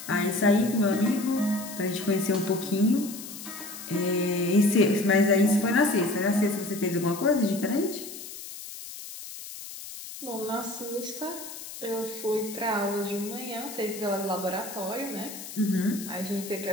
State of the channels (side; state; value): left; noise; hiss, 12 dB below the sound